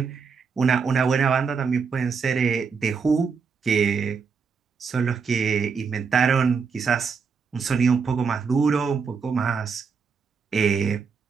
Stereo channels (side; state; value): left; quieter; 5.7 dB